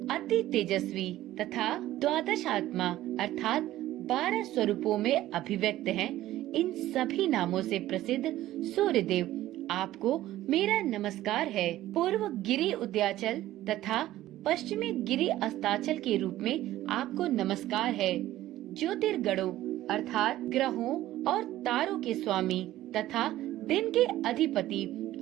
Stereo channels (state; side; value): quieter; left; 14.7 dB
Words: अति तेजस्वी तथा द्वादश आत्मा अर्थात 12 स्वरूपों में अभिव्यक्त हैं। इन सभी नामों से प्रसिद्ध सूर्यदेव आपको मेरा नमस्कार है। पूर्व गिरि उद्याचल तथा पश्चिमी गिरि अस्ताचल के रूप में आपको नमस्कार है। ज्योतिर्गणों अर्थात ग्रहों और तारों के स्वामी तथा दिन के अधिपति